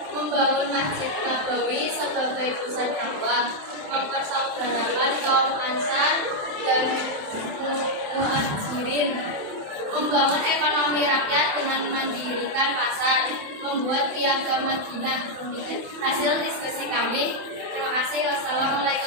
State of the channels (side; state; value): left; late; 27 ms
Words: membangun Masjid Nabawi sebagai pusat dakwah, mempersaudarakan kaum Ansar dan Muhajirin, membangun ekonomi rakyat dengan mendirikan pasar, membuat piagam Madinah. Demikian hasil diskusi kami. Terima kasih.